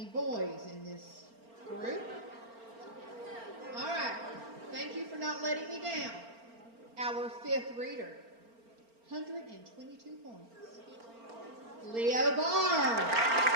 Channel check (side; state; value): left; late; 4.4 ms